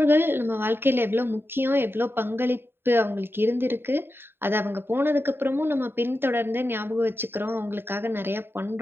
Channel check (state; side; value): late; left; 0.11 ms